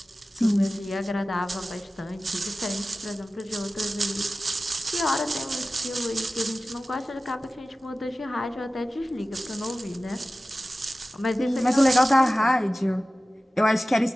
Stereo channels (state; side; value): normal; both; correlation 0.96